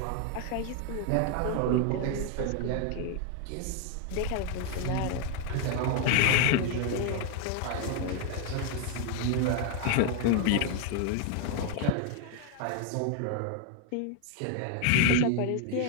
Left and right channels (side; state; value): both; different; correlation 0.00